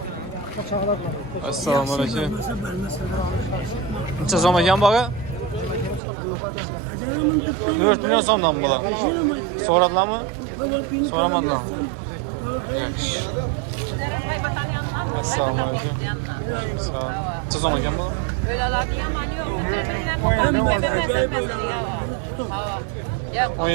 Assalomu alaykum. Necha so'm ekan bu aka? 4 million so'mdan bular. So'radilarmi? So'ramadilarmi? Yaxshi. Assalomu alaykum. Sağ ol. Necha so'm ekan bu?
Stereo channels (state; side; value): drops out; left; at 6.0 s